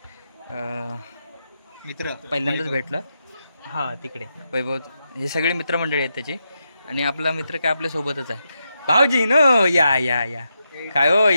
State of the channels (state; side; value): inverted; both; correlation -0.85